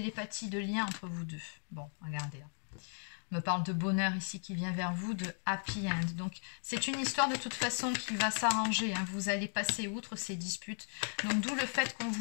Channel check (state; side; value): silent; right; 54 dB below the other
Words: de lien entre vous deux. Bon, regardez là. On me parle de bonheur ici qui vient vers vous, de happy end. Donc, c'est une histoire de toute façon qui va s'arranger. Hein. Vous allez passer outre ces disputes. Donc, d'où le fait qu'on